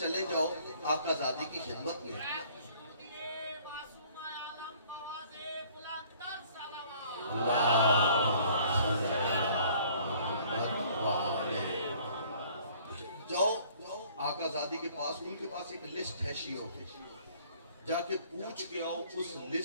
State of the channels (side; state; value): both; inverted; correlation -0.56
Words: جاؤ آقا زادی کی خدمت میں. جاؤ آقا زادی کے پاس، ان کے پاس ایک لسٹ ہے شیعوں کی، جا کے پوچھ کے آؤ اس